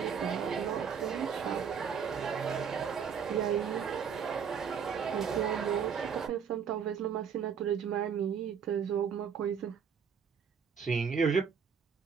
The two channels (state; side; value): quieter; left; 7.0 dB